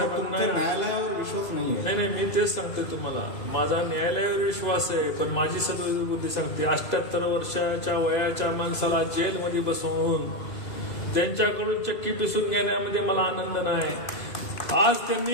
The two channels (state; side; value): late; right; 2.0 ms